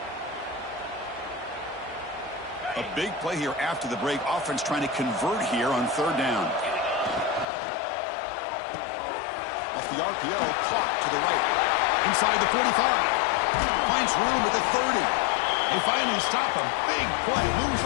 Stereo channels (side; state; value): right; drops out; at 7.5 s